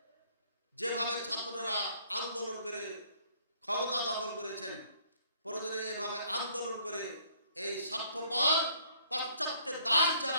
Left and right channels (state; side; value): inverted; both; correlation -0.63